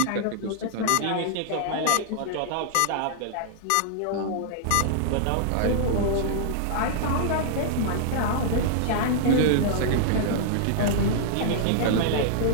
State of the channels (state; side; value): different; both; correlation -0.01